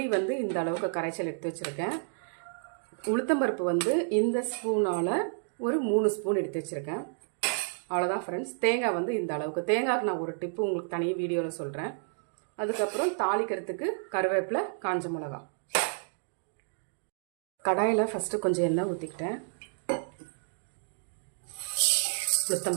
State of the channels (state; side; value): silent; left; digital silence